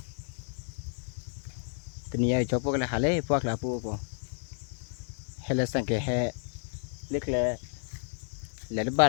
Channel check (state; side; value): silent; right; digital silence